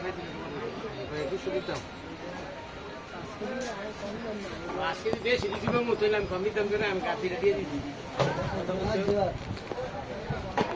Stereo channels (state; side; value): identical; both; correlation 1.00